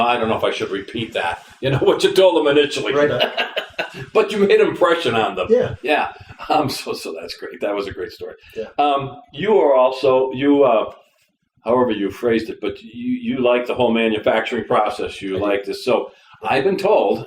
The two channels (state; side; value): identical; both; correlation 1.00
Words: I don't know if I should repeat that. What you told them initially, Right. But you made an impression on them. Yeah. Yeah. So that's great. That was a great story. Yeah. You are also however you phrased it, but you like the whole manufacturing process. You like this. So I've been told,